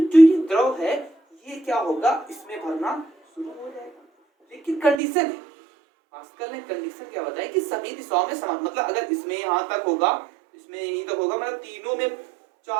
जो ये द्रव है ये क्या होगा, इसमें भरना शुरू हो जाएगा। लेकिन कंडीशन है, पास्कल ने कंडीशन क्या बताया कि सभी दिशाओं में समान, मतलब अगर इसमें यहाँ तक होगा, इसमें यहीं तक होगा, मतलब तीनों में,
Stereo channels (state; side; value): drops out; left; at 5.0 s